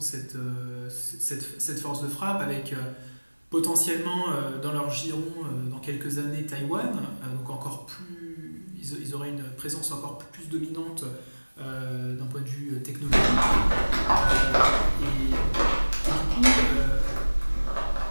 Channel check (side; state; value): both; inverted; correlation -1.00